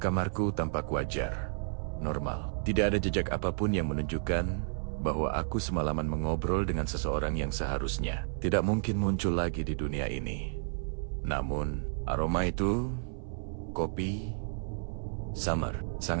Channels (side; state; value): left; silent; 57 dB below the other